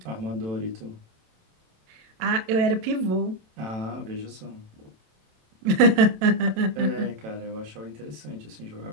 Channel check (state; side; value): late; left; 27 ms